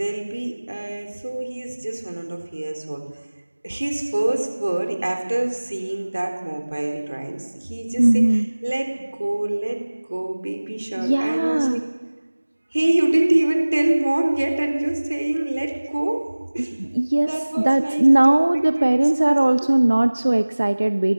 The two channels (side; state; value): both; inverted; correlation -1.00